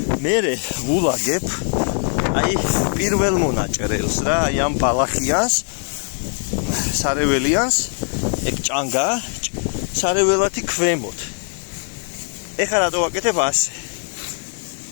მე ვულაგებ აი პირველ მონაჭრელს რა, აი ამ ბალახიანს, სარეველიანს, ეგ ჭანგა, სარეველათი ქვემოთ. ეხლა რატო ვაკეთებ ასე?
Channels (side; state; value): right; silent; 56 dB below the other